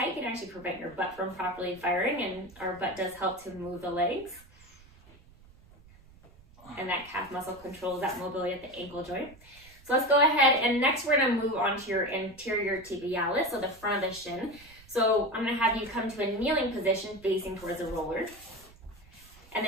it can actually prevent your butt from properly firing, and our butt does help to move the legs. And that calf muscle controls that mobility at the ankle joint. So let's go ahead, and next we're going to move on to your anterior tibialis, so the front of the shin. So I'm going to have you come to a kneeling position facing towards the roller. And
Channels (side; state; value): right; noise; rumble, 24 dB below the sound